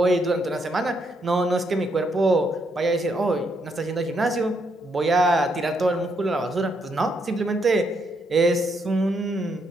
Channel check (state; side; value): normal; both; correlation 0.76